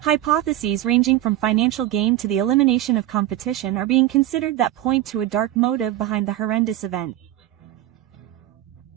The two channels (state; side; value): quieter; left; 14.0 dB